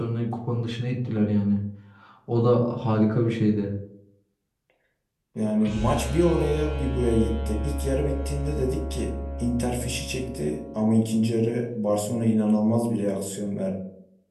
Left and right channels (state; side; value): identical; both; correlation 1.00